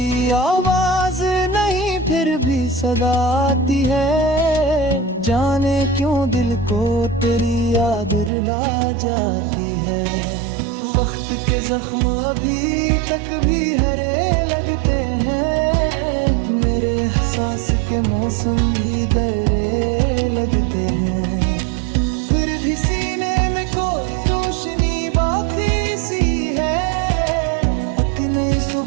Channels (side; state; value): left; drops out; at 8.3 s